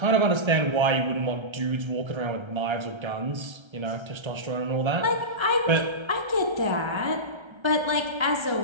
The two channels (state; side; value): late; left; 1.3 ms